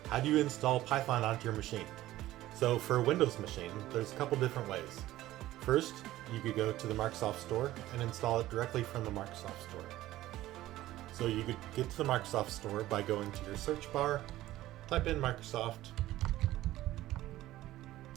how do you install Python onto your machine. So for a Windows machine, there's a couple different ways. First, you could go to the Microsoft Store and install it directly from the Microsoft Store. So you could get to the Microsoft Store by going to your search bar, type in Microsoft,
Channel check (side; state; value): left; quieter; 15.4 dB